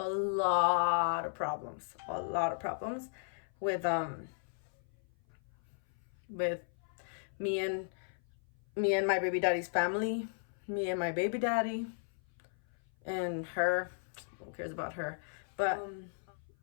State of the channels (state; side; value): silent; right; 54 dB below the other